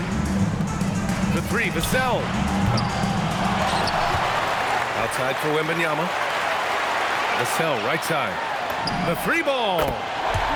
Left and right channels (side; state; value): both; identical; correlation 1.00